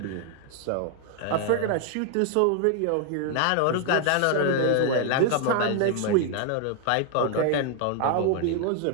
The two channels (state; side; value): different; both; correlation 0.00